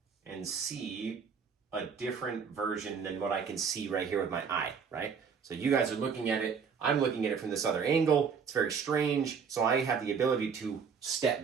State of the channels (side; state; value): left; quieter; 6.3 dB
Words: and see a different version than what I can see right here with my eye, right? So you guys are looking at it. I'm looking at it from this other angle. It's very strange. So I have the ability to step